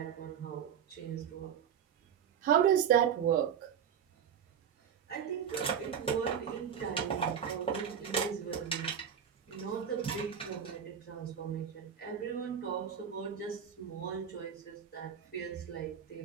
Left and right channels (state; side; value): quieter; left; 8.2 dB